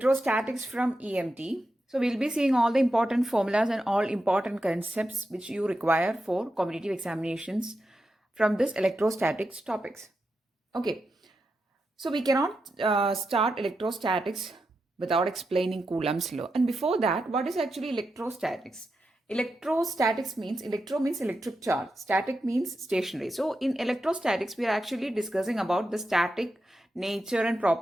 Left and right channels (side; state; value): both; normal; correlation 0.88